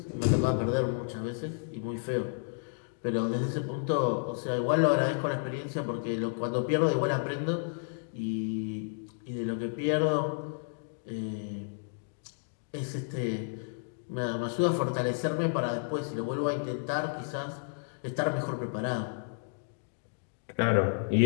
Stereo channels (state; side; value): silent; right; digital silence